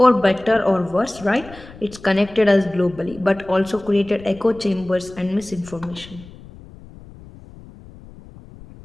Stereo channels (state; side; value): noise; left; rumble, 20 dB below the sound